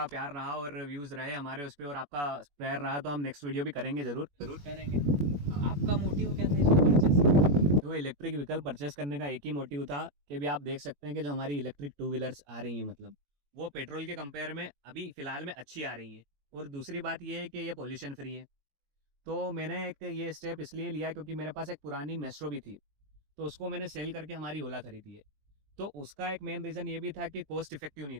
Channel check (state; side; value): late; left; 21 ms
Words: प्यार रहा और व्यूज़ रहे हमारे उस पर और आपका प्यार रहा तो हम नेक्स्ट वीडियो भी करेंगे ज़रूर करेंगे। आपका मोटिव क्या था इसको परचेस करने? तो इलेक्ट्रिक व्हीकल परचेस करने का एक ही मोटिव था कि भी आप देख सकते हैं कि जो हमारी इलेक्ट्रिक टू व्हीलर्स आ रही हैं, मतलब वो पेट्रोल के कंपेयर में अभी फ़िलहाल में अच्छी आ रही है। और दूसरी बात ये है कि ये पोल्यूशन फ्री है। तो मैंने एक ये स्टेप इसलिए लिया क्योंकि मेरे पास एक पुरानी मेस्ट्रो भी थी, तो उसको मैंने सेल करके हमारी ओला खरीदी है। तो उसका एक मेन रीज़न ये भी था कि कॉस्ट इफेक्टिव नहीं